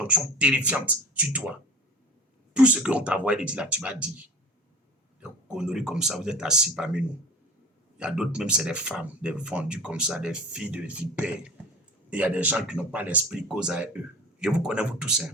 terrifiante sur toi. Tout ce qu'on t'a envoyé de dire là, tu vas dire. Des conneries comme ça, vous êtes assis parmi nous. Il y a d'autres, même c'est des femmes, des vendues comme ça, des filles de vipères. Et il y a des gens qui n'ont pas l'esprit cause à eux. Je vous connais, vous tous.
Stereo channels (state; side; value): normal; both; correlation 0.39